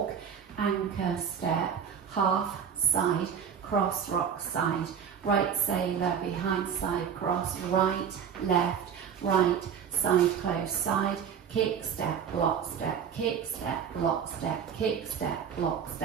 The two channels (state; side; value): quieter; left; 7.6 dB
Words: anchor step, half, side, cross rock side, right sailor, behind side cross, right, left, right, side close, side, kick, step, block, step, kick, step, block, step, kick, step, block,